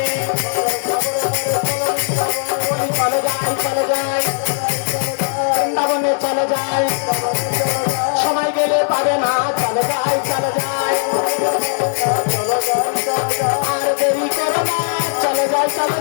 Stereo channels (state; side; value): silent; right; 62 dB below the other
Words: চলে যায় বৃন্দাবনে চলে যায় সময় গেলে পাবে না চলে যায় আর দেরি করো না চলে যায়